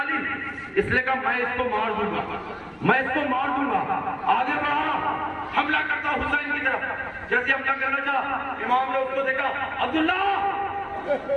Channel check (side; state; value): both; identical; correlation 1.00